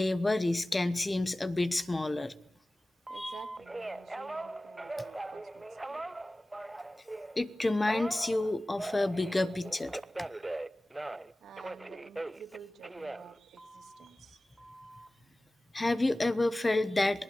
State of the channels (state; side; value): normal; both; correlation 0.97